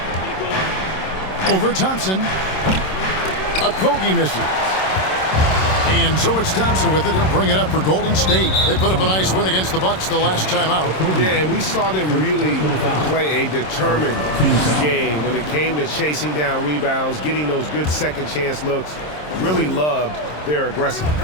Over Thompson. Okogie misses. And so it's Thompson with it. He'll bring it up for Golden State. They put up a nice win against the Bucks the last time out. Yeah, and we saw them really play a determined game when it came to chasing down rebounds, getting those good second chance looks. Really loved their aggressiveness.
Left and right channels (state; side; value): late; right; 27 ms